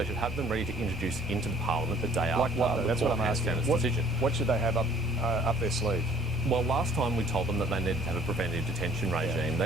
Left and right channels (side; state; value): both; normal; correlation 0.56